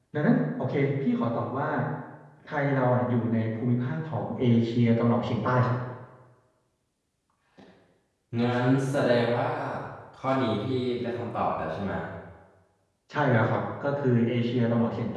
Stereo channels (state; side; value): identical; both; correlation 1.00